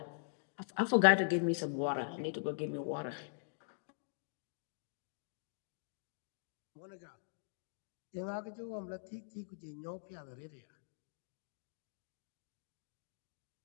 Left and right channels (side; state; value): right; silent; digital silence